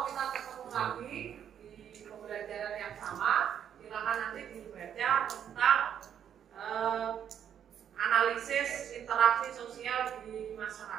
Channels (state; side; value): quieter; left; 9.1 dB